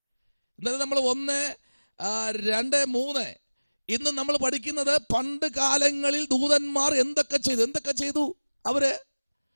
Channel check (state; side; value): inverted; both; correlation -1.00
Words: ഇന്നലെ നമ്മൾ 1, 2, 3 ഇന്ന് നമ്മൾ പഠിക്കുന്നത് പണ്ട് കാലങ്ങളിൽ ദൂതന്മാർ എന്തൊക്കെ ചെയ്തു അവര്.